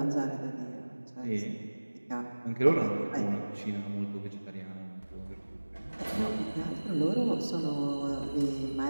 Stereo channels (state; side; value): inverted; both; correlation -1.00